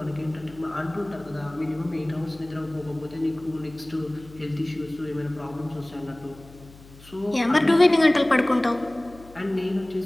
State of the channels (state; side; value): noise; left; hum, 21 dB below the sound